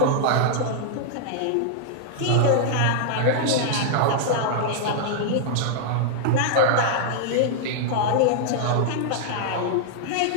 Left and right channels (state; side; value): different; both; correlation -0.01